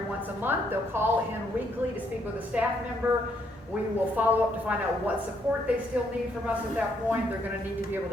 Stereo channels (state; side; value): normal; both; correlation 0.72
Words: once a month. They'll call in weekly to speak with a staff member. We will follow up to find out what support they still need from us at that point. They're going to need to be able